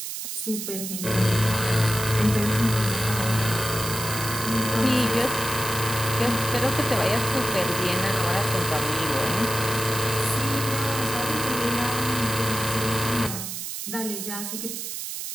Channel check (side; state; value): right; noise; hiss, 6 dB below the sound